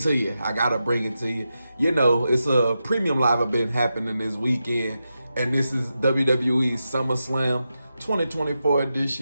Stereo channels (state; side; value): inverted; both; correlation -0.89